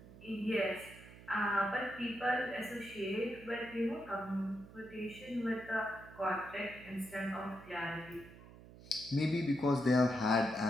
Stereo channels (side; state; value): right; noise; hum, 18 dB below the sound